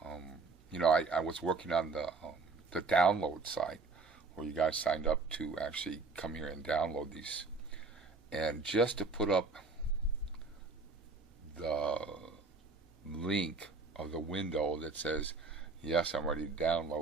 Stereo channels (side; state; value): left; quieter; 4.0 dB